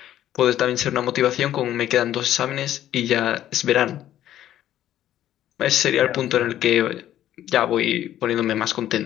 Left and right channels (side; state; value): right; quieter; 12.1 dB